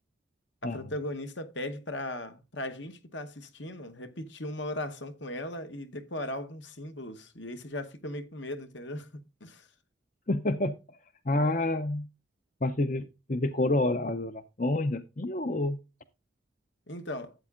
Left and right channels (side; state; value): both; normal; correlation 0.42